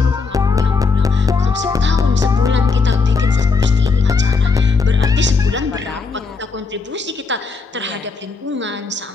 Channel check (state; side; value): quieter; right; 4.4 dB